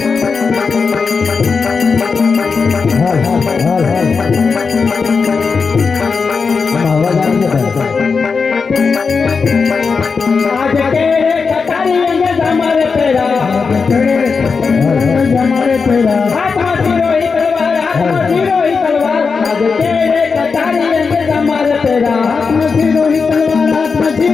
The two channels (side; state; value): right; quieter; 5.1 dB